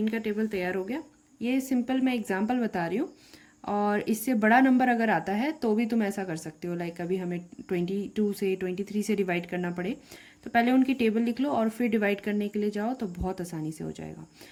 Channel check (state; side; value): identical; both; correlation 1.00